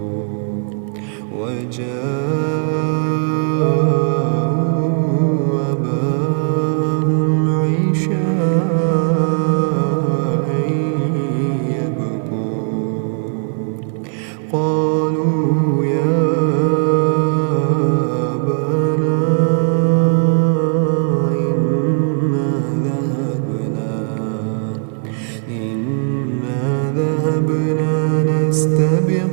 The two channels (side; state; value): left; silent; 65 dB below the other